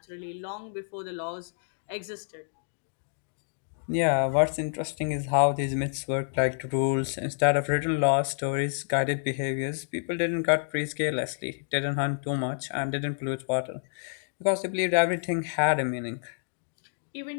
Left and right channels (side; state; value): right; silent; digital silence